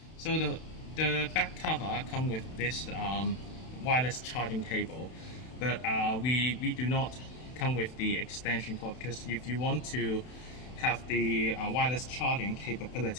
So the back cover comes with this wireless charging cable, but we do not come with the extension cord, because if you want to have the wireless charging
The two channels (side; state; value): right; late; 32 ms